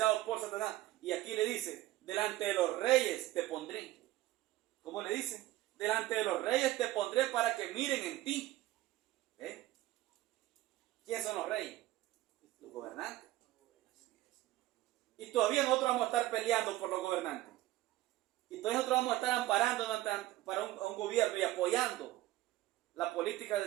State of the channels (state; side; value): quieter; left; 16.1 dB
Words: por Satanás. Y aquí le dice, delante de los reyes te pondré. ¿Cómo le dice? Delante de los reyes te pondré para que miren en ti. ¿Quiénes son los reyes? Los gobernantes. Y todavía nosotros vamos a estar peleando por los gobernantes. Y todavía nosotros vamos a estar amparando para un gobierno y apoyando la política